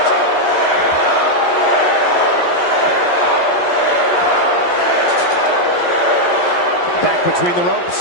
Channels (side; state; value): right; late; 11 ms